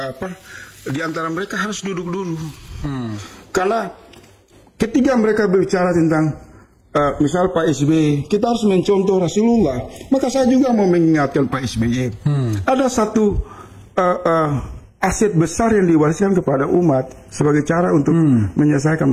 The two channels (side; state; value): both; identical; correlation 1.00